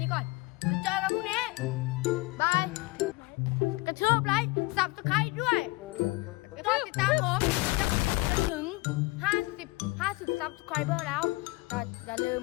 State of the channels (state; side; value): quieter; right; 23.6 dB